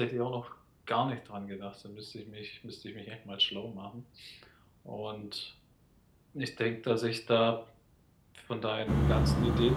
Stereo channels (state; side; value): identical; both; correlation 1.00